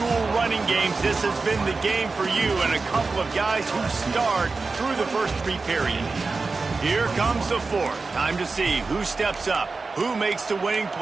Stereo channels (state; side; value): quieter; left; 4.0 dB